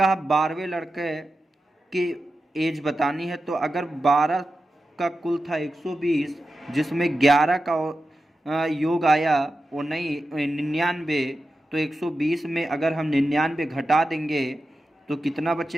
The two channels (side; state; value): both; normal; correlation 0.91